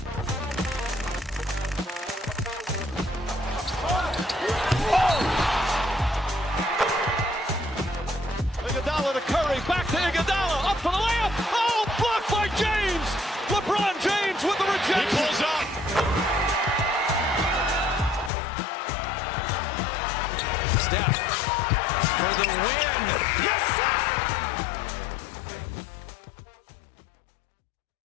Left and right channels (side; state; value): right; drops out; at 18.3 s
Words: Iguodala to Curry, back to Iguodala, up for the layup. Oh, blocked by James. LeBron James with the rejection. He pulls up. Steph for the win. Yes, sir!